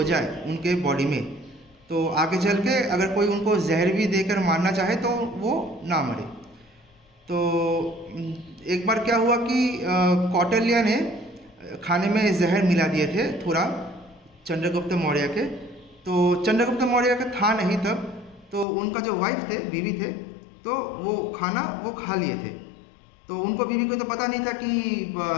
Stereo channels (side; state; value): right; drops out; at 18.7 s